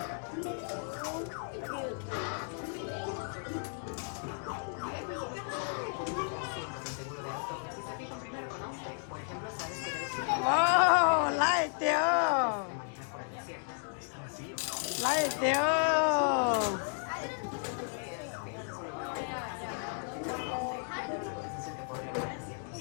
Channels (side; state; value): right; silent; 55 dB below the other